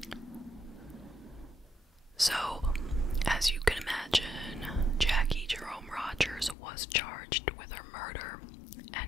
So, as you can imagine, Jackie Jerome Rogers was charged with her murder,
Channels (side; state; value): right; drops out; at 6.6 s